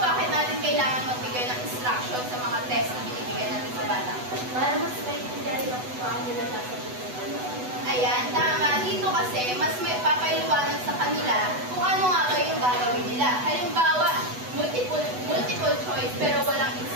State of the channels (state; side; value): late; left; 8.1 ms